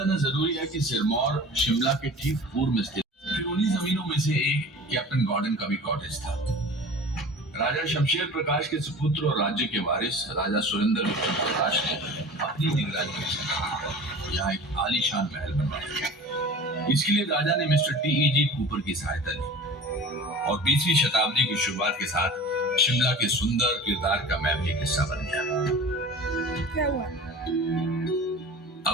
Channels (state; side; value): normal; both; correlation 0.39